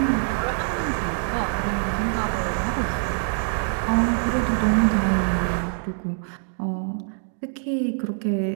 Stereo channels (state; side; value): silent; left; digital silence